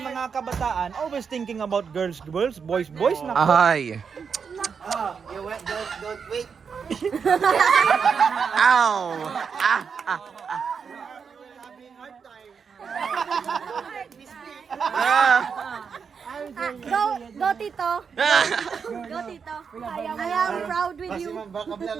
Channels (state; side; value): quieter; left; 6.2 dB